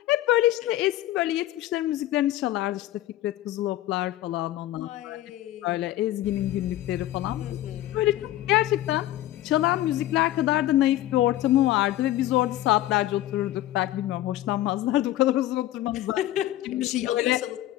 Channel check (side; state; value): right; quieter; 14.4 dB